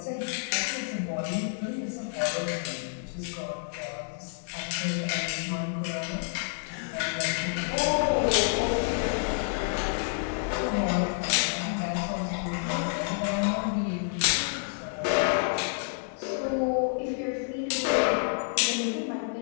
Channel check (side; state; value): right; silent; digital silence